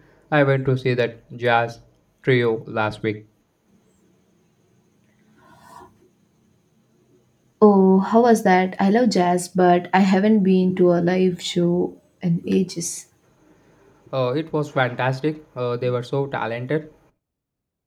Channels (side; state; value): both; identical; correlation 1.00